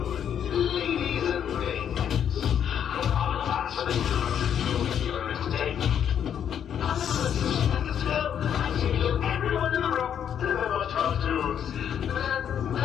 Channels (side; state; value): right; quieter; 8.9 dB